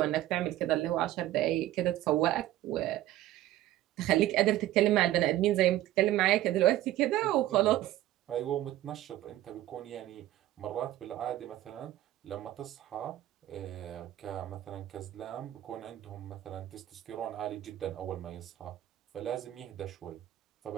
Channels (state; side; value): quieter; left; 14.4 dB